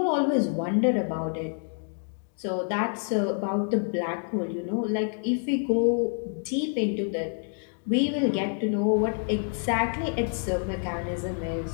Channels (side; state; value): right; silent; 57 dB below the other